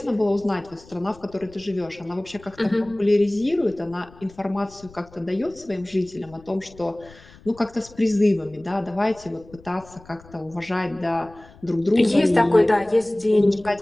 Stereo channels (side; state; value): left; noise; rumble, 23 dB below the sound